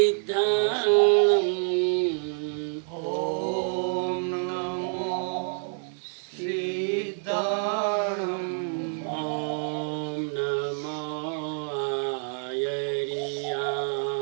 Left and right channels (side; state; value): left; silent; 60 dB below the other